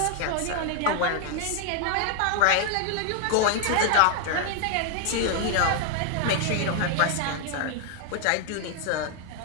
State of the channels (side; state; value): both; different; correlation 0.00